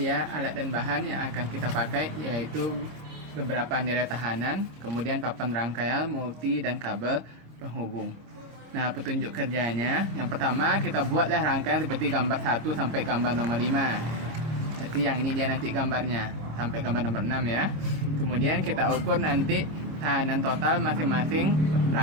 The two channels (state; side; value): late; left; 26 ms